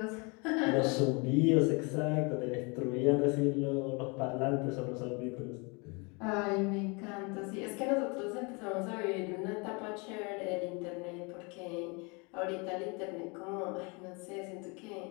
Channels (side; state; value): right; quieter; 30.5 dB